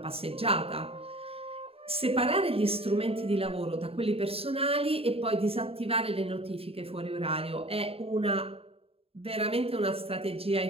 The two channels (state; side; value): late; left; 0.28 ms